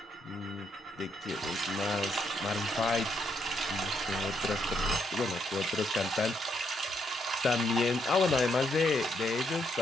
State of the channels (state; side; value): normal; both; correlation 0.76